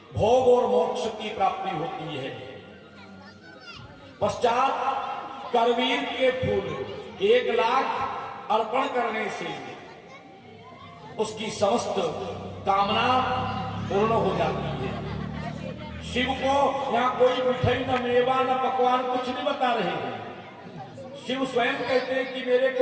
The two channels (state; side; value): identical; both; correlation 1.00